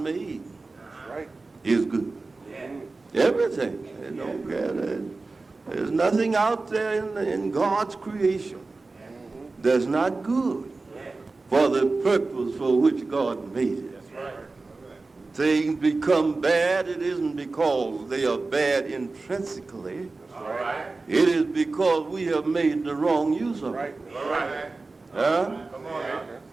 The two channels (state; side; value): quieter; left; 3.6 dB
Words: is good. Everything. There's nothing out there in God's creation that's not good for the purpose for which God made it. Things become bad, it isn't because they are bad intrinsically. It is because we have made the wrong use of it.